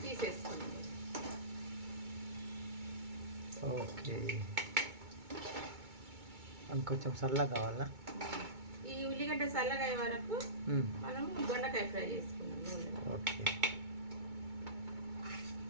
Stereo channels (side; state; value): left; late; 2.2 ms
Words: తీసేసుకున్నాం. ఓకే, కొంచెం చల్లగా కావాలా? ఈ ఉల్లిగడ్డ చల్లగా అయ్యే వరకు మనము దొండకాయ ఫ్రై చేసుకున్నాం. ఓకే,